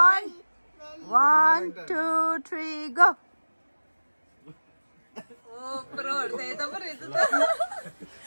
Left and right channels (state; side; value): inverted; both; correlation -1.00